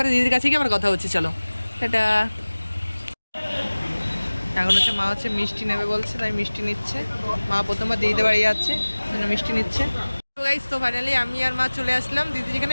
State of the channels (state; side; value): inverted; both; correlation -1.00